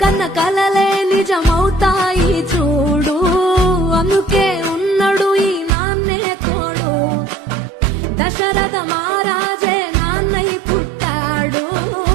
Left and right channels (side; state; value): left; drops out; at 5.7 s